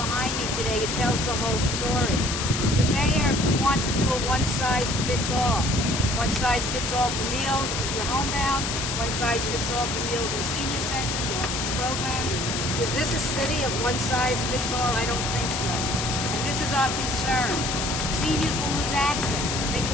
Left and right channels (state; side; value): noise; left; hiss, 2 dB below the sound